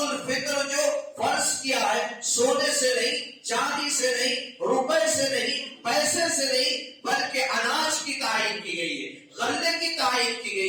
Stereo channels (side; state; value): both; identical; correlation 1.00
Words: جو فرض کیا ہے، سونے سے نہیں، چاندی سے نہیں، روپے سے نہیں، پیسے سے نہیں، بلکہ اناج کی تعین کی گئی ہے، غلے کی تعین کی